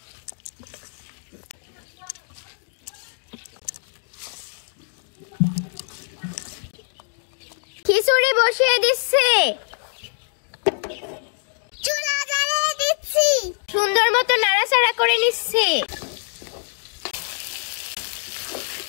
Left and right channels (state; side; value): silent; right; 60 dB below the other